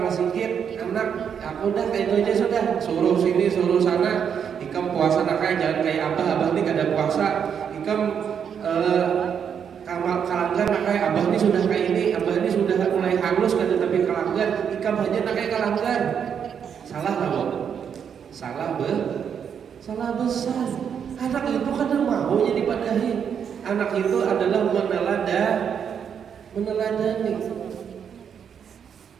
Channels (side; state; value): left; quieter; 7.7 dB